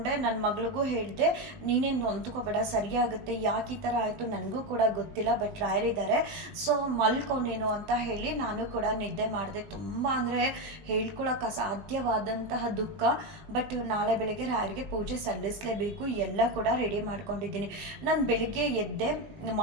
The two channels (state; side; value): late; left; 20 ms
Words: ನನ್ನ ಮಗಳಿಗೂ ಹೇಳಿದೆ, ನೀನೇನು ನೊಂದ್ಕೋಬೇಡ, ಸರಿಯಾಗುತ್ತೆ. ಯಾಕೆ ಈ ಥರ ಆಯಿತು ನನಗೂ ಕೂಡ ಗೊತ್ತಿಲ್ಲ, ಬಟ್ ರಾಯರಿದ್ದಾರೆ, ಸೊ ಮಲ್ಕೊಂಡೇನು ಅಂತ ಹೇಳಿ ನಾನು ಕೂಡ ನಿದ್ದೆ ಮಾಡಿದೆ. ತುಂಬ ಅಂದರೆ ಹೇಳ್ಕೊಳಕ್ಕೆ ಅಸಾಧ್ಯವಾದಂತಹ ದುಃಖ. ಬಟ್ ನಾಳೆ ಬೆಳಗ್ಗೆ ರಾಯರಿಗೆ ಪೂಜೆ ಸಲ್ಲಿಸಲೇಬೇಕು. ಎಲ್ಲ ಕೂಡ ರೆಡಿ ಮಾಡ್ಕೊಂಡಿದ್ದೀನಿ. ನಾನು ಬೆಳಿಗ್ಗೆ ಎದ್ದೆ,